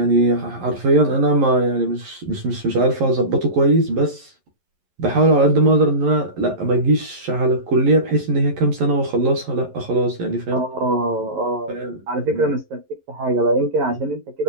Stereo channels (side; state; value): left; late; 11 ms